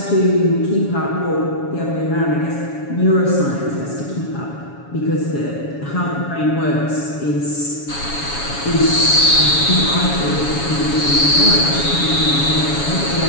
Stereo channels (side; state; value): right; late; 7.1 ms